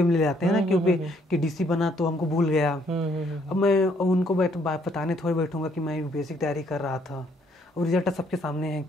में ले जाते हैं ना, क्योंकि कि डीसी बना तो हमको भूल गया। अब मैं उनको बताने थोड़ी बैठूंगा कि मैं यूपीएससी की तैयारी कर रहा था, और रिजल्ट सबके सामने है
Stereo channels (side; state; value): both; normal; correlation 0.67